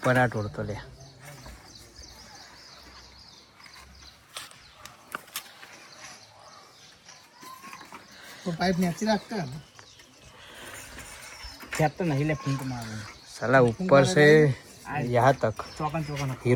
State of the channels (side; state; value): both; identical; correlation 1.00